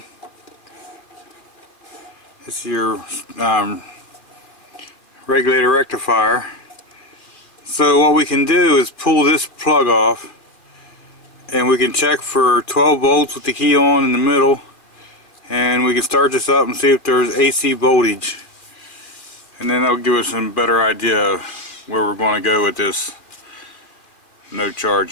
This is your regulator rectifier. So what we can do is pull this plug off and we can check for 12 volts with the key on in the middle, and we can start this up and see if there's AC voltage, and then that'll give us a better idea of where we're going to go with this no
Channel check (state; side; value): late; right; 2.4 ms